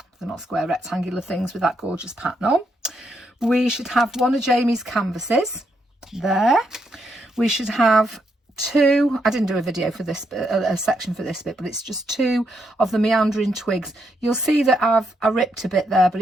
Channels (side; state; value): both; normal; correlation 0.78